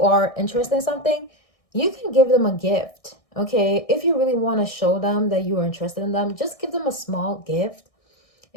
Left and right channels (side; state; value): right; late; 1.6 ms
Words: are interested in something, you can give them a gift. Okay, if you really want to show them that you are interested in them, just give them a small gift.